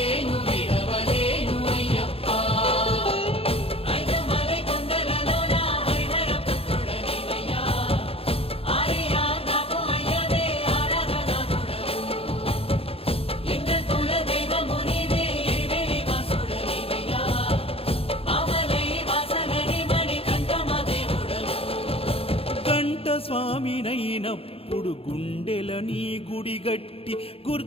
విడవలేను అయ్యప్ప. ఐదమలై కొండలలోన హరిహర పుత్రుడనివయ్యా, ఆర్యా నాకు అయ్యదే ఆరాధనాథుడవు. లింగ కుల దైవము నీవే ఎరివేలి వాసుడనివయ్యా, మామలై వాసనని మణికంఠమ దేవుడవు. కంఠ స్వామినైనప్పుడు గుండెల నీ గుడి గట్టి,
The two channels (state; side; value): late; right; 0.28 ms